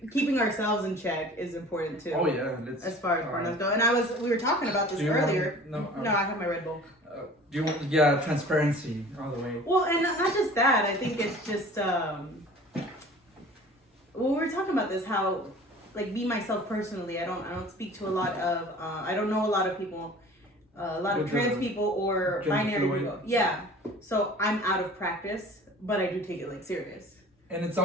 keeping ourselves in check is important too. oh yeah, let's. As far as pronouns go, and we were talking about this Do you earlier. want- No, I have my Red Bull. Do you want? Yeah, transparency all the way. Well, and not just that. I think it's just well, we were talking about this, how like me myself personally, I don't speak to a lot of I don't know a lot of people, a lot of With trans the people or gender binary fluid. people. Yeah, so I'm out of practice, but I do take it like serious. And it's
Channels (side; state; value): both; normal; correlation 0.45